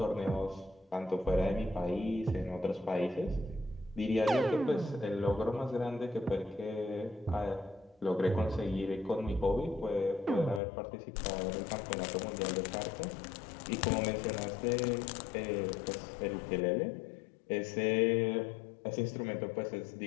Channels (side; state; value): right; drops out; at 10.6 s